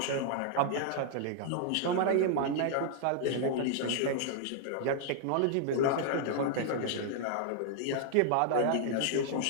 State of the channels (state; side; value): different; both; correlation -0.01